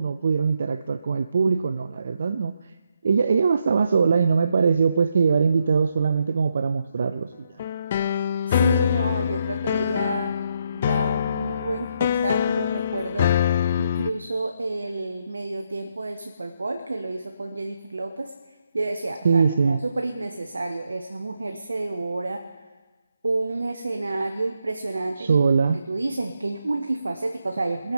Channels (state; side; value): inverted; both; correlation -0.79